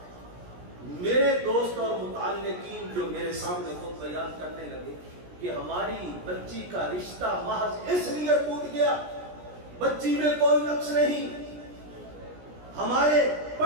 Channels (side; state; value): left; late; 17 ms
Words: میرے دوست اور متعلقین جو میرے سامنے خود بیان کرنے لگے کہ ہماری بچی کا رشتہ محض اس لیے ٹوٹ گیا، بچی میں کوئی نقص نہیں، ہمارے